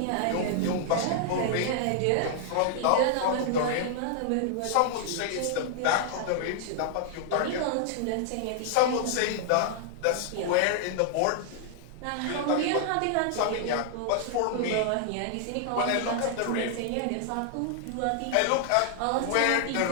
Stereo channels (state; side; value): different; both; correlation -0.01